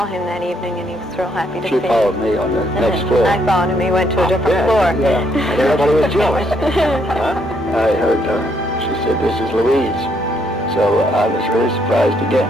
him that evening, and he was real happy to see me. She followed me on the next floor. I followed him. He went to a different floor. Yeah. And everybody was jealous. I heard her. She said, "This is Louise." So I was really surprised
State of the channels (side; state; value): both; normal; correlation 0.72